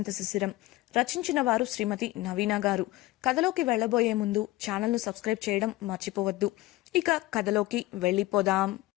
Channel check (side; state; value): right; quieter; 18.3 dB